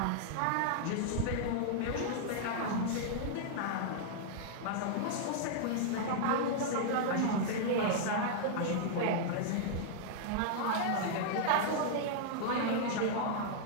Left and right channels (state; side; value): different; both; correlation -0.01